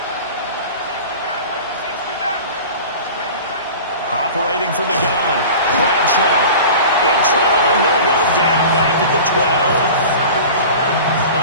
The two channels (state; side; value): inverted; both; correlation -0.37